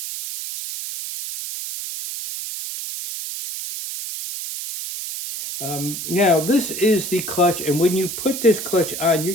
Now this is the clutch, and when you put this clutch on, you're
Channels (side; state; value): right; noise; hiss, 7 dB below the sound